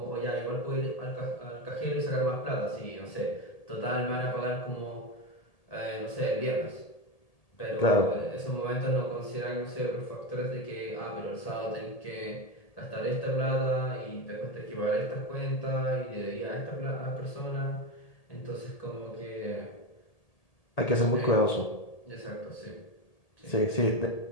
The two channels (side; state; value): right; late; 1.8 ms